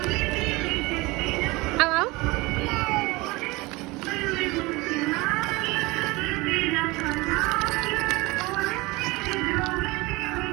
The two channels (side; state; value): left; quieter; 22.8 dB